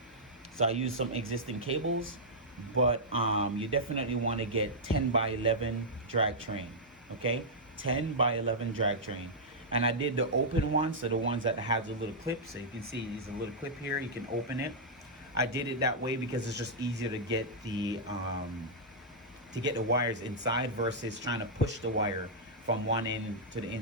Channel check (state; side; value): normal; both; correlation -0.09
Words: So I use some existing cables, but you definitely want to get 10 by 11 drag train. Okay, 10 by 11 drag train. And I did the open ones, so the ones that have the little clip. So you can see there's a little clip here, you can open it. I did it that way because it's just easier to get the wires inside versus trying to push the wire from one end to the